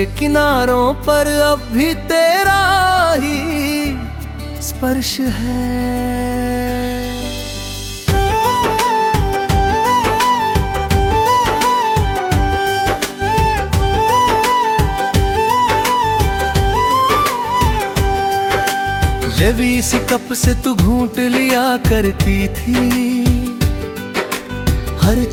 किनारों पर अब भी तेरा ही स्पर्श है। जब इसी कप से तू घूंट लिया करती थी, हर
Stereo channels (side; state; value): both; identical; correlation 1.00